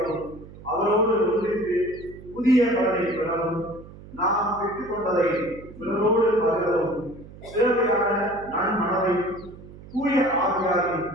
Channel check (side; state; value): right; noise; hum, 18 dB below the sound